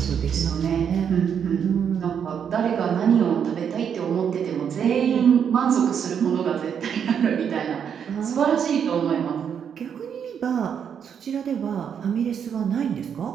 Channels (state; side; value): quieter; left; 7.8 dB